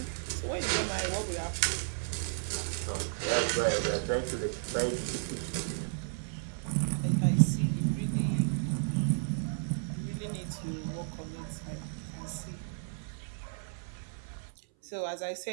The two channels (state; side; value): silent; left; 56 dB below the other